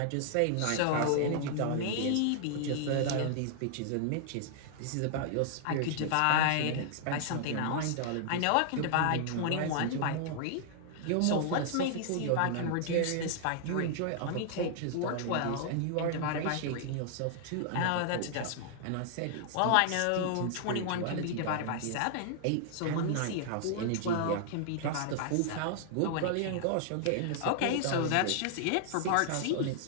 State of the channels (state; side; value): different; both; correlation -0.01